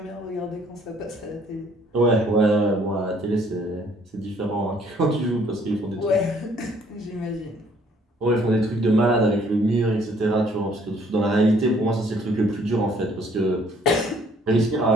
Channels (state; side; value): normal; both; correlation 0.62